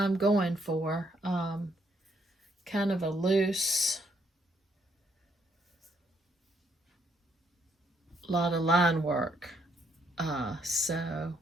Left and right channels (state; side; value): normal; both; correlation 0.72